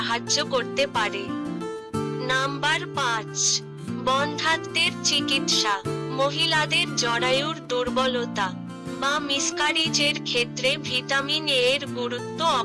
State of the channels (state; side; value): identical; both; correlation 1.00